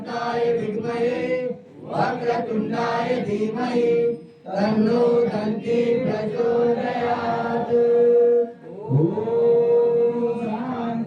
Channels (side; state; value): both; identical; correlation 1.00